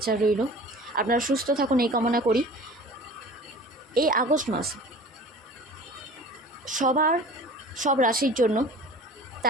রইল। আপনারা সুস্থ থাকুন এই কামনা করি। এই আগস্ট মাস সব রাশির জন্য,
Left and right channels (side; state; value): both; normal; correlation 0.41